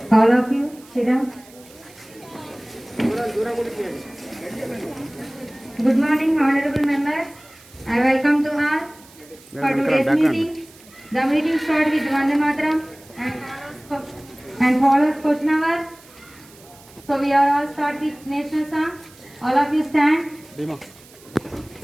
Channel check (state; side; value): noise; right; hiss, 24 dB below the sound